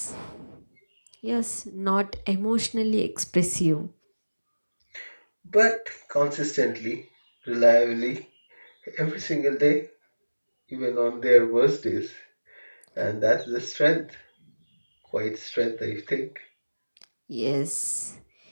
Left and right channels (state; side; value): inverted; both; correlation -1.00